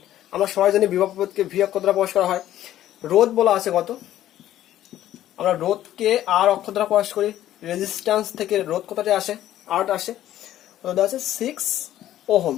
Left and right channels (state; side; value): quieter; right; 12.8 dB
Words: আমরা সবাই জানি বিভব প্রভেদকে ভি অক্ষর দ্বারা প্রকাশ করা হয়। রোধ বলা আছে কত? আমরা রোধকে আর অক্ষর দ্বারা প্রকাশ করি। রেজিস্ট্যান্স থেকে রোধ কতটা আসে? আর আসে। রোধ আছে 6 ওহম।